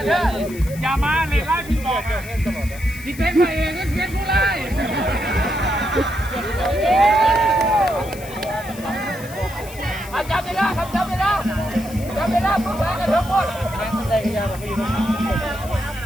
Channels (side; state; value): left; noise; hiss, 17 dB below the sound